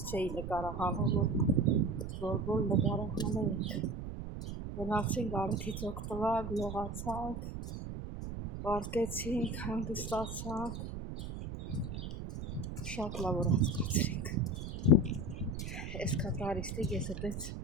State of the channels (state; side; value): noise; right; rumble, 7 dB below the sound